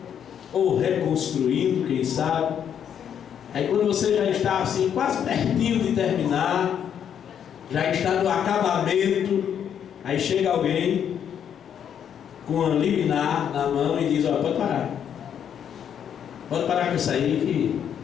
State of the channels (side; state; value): right; quieter; 8.7 dB